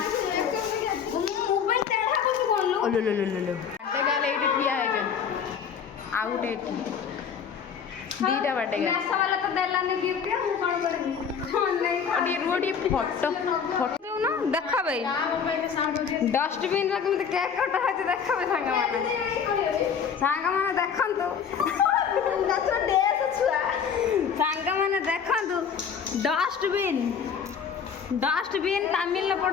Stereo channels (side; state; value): right; quieter; 6.9 dB